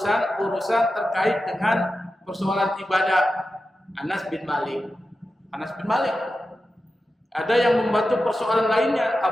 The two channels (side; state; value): both; normal; correlation 0.92